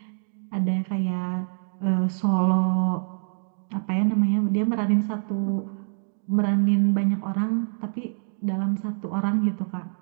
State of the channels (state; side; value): silent; left; digital silence